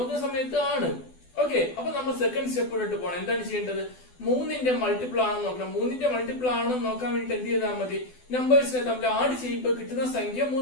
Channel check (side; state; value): right; late; 12 ms